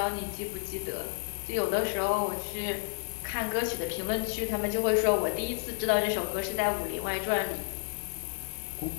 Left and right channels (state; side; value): silent; right; 57 dB below the other